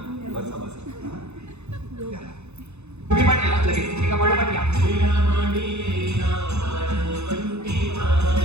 बसा बसा. तुम्ही पण या लगेच. एका पाठोपाठ या.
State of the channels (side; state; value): left; late; 0.81 ms